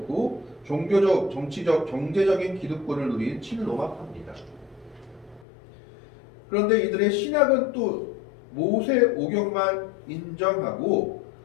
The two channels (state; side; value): drops out; right; at 5.5 s